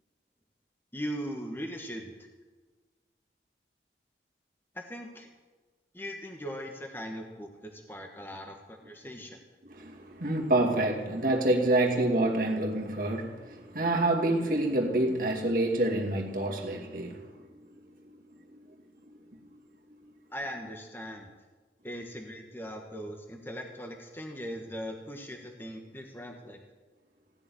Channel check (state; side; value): normal; both; correlation 0.42